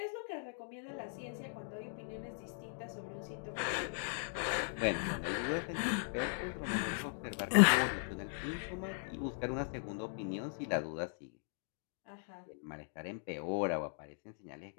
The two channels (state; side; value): silent; right; digital silence